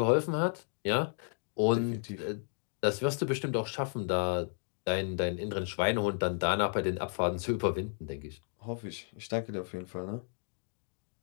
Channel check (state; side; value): silent; right; 56 dB below the other